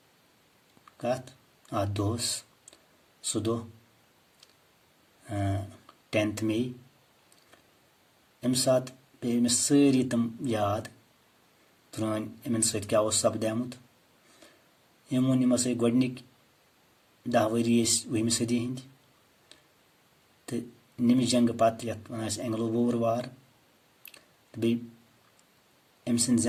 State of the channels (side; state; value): both; identical; correlation 1.00